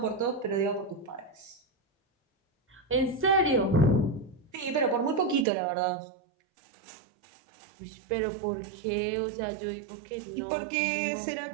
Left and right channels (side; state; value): left; drops out; at 5.5 s